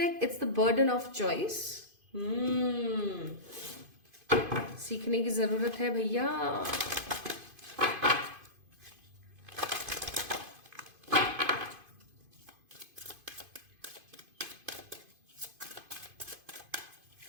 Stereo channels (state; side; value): late; left; 2.5 ms